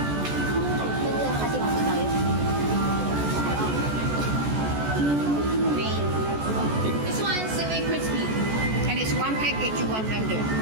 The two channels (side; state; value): left; late; 14 ms